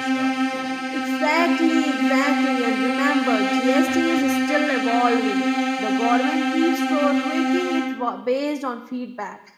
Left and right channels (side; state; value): both; identical; correlation 1.00